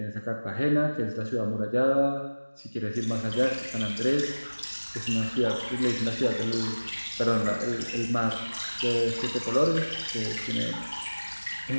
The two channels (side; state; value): both; inverted; correlation -1.00